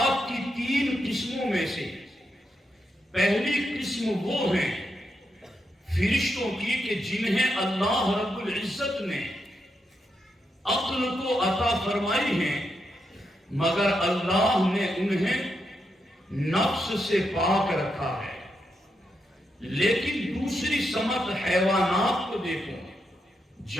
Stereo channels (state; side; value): normal; both; correlation 0.83